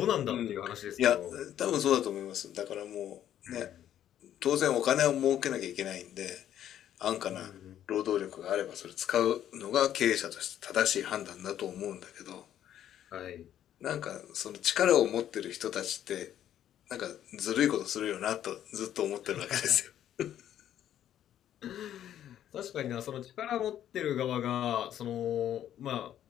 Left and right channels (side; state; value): right; quieter; 11.0 dB